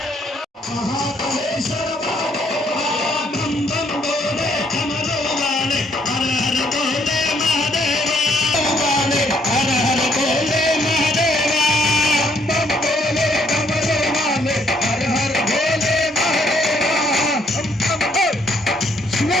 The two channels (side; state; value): both; normal; correlation 0.68